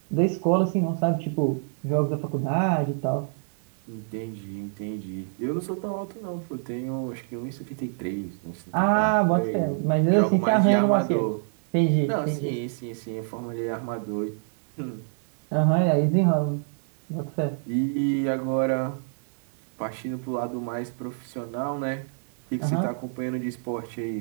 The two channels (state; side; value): silent; left; digital silence